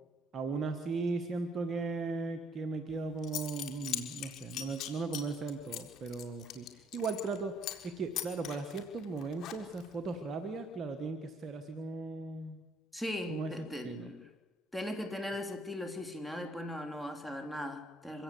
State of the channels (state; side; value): normal; both; correlation 0.65